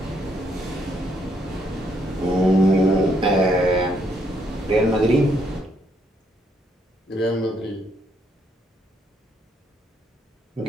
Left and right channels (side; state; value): both; normal; correlation 0.73